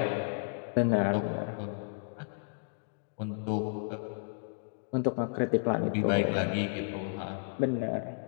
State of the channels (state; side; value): silent; right; digital silence